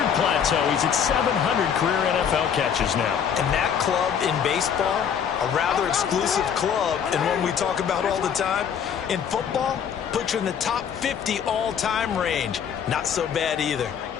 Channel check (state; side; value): quieter; right; 7.9 dB